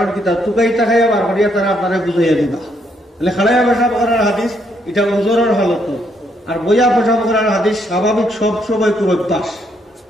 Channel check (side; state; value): both; normal; correlation 0.73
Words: কিতা টুকাই টাকাইয়া বার করিয়া তারা আপনারা বুঝাইয়া দিবা। তাহলে খাড়াইয়া পেশাব করার হাদিস এটা ওজরের হালত, আর বইয়া পেশাব করার হাদিস স্বাভাবিক সব সময় কোন অভ্যাস।